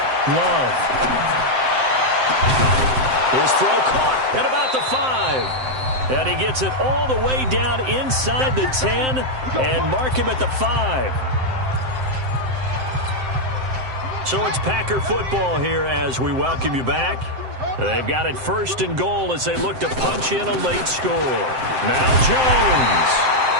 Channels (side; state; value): left; late; 7.7 ms